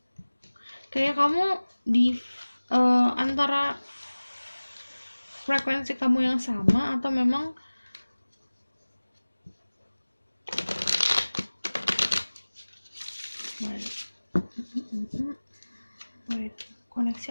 Kayak kamu di antara frekuensi kamu yang sama, atau memang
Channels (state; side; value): inverted; both; correlation -1.00